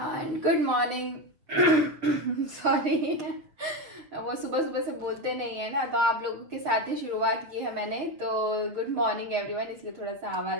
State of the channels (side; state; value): left; late; 6.7 ms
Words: good morning. Sorry, वो सुबह सुबह से बोलते नहीं है ना, तो आप लोगों के साथ ही शुरुआत की है मैंने, तो गुड मॉर्निंग एवरीवन, इसलिए थोड़ा सा